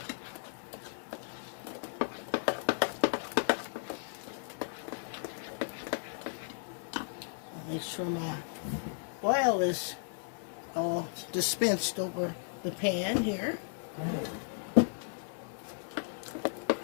Make sure my oil is all dispensed over the pan here.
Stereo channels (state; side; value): silent; right; digital silence